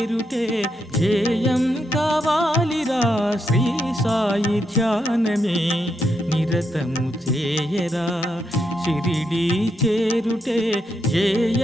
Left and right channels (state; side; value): normal; both; correlation 0.81